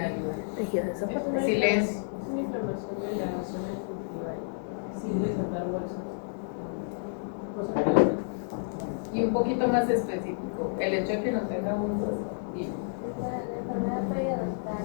tejidos esofágicos. Silencio. Es una inflamación de la zona gingival sin desatar bolsas. Cosas que Y un poquito más específico, el hecho de que no tenga bolsas. Dime. La enfermedad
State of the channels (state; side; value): silent; right; digital silence